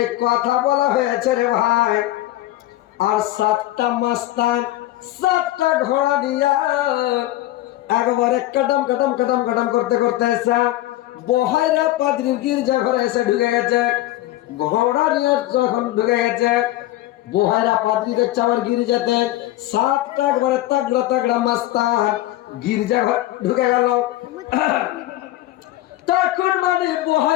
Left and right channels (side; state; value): right; quieter; 15.9 dB